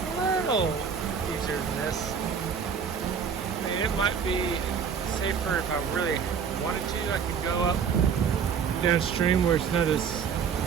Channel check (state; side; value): quieter; left; 6.7 dB